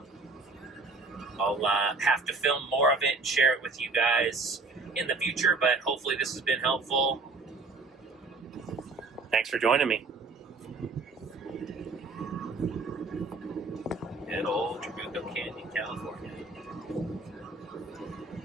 I'll have to film more of it and share it with you guys in the future, but hopefully this has been helpful. Thanks for joining me. Good old Trabuco Canyon, California.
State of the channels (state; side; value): quieter; left; 3.7 dB